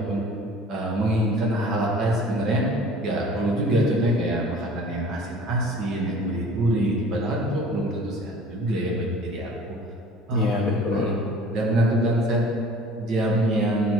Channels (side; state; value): both; normal; correlation 0.47